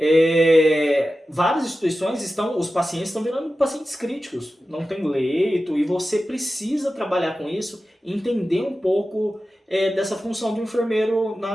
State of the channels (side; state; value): both; normal; correlation 0.94